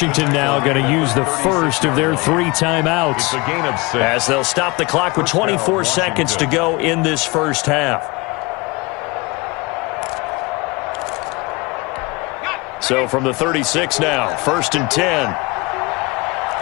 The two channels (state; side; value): quieter; right; 25.1 dB